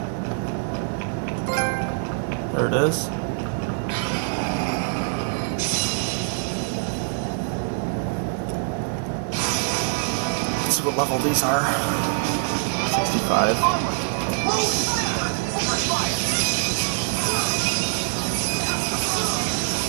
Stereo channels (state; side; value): silent; left; digital silence